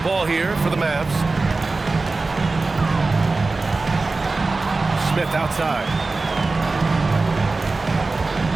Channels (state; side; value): quieter; left; 3.6 dB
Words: ball here for the Mavs. Smith outside.